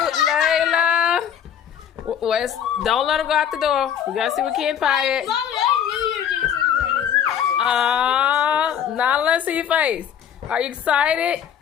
Layla. West, don't let him go out the door. We gotta see what Ken Pie at. Nala, let's see your face. Are you excited?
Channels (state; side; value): quieter; right; 9.0 dB